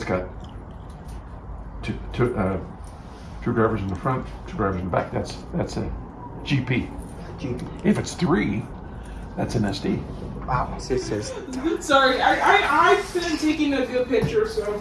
got two drivers in the front, 2 drivers in the back. That's a GP. If it's 3, that's an SD. Wow. This is Sorry, I've been taking a good picture,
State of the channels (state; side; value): identical; both; correlation 1.00